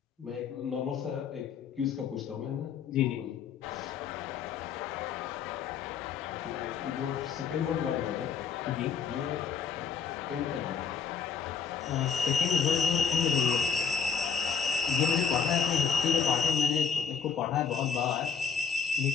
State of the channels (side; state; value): right; quieter; 6.5 dB